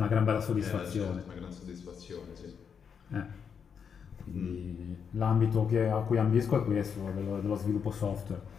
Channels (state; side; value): quieter; right; 6.9 dB